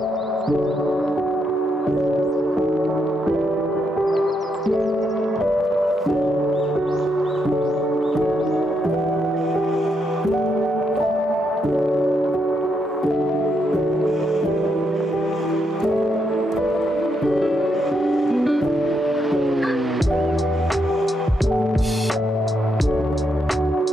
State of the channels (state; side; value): normal; both; correlation 0.79